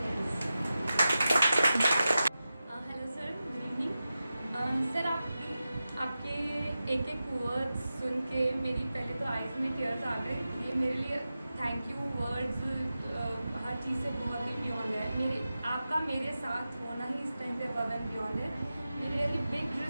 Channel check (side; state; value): both; inverted; correlation -0.93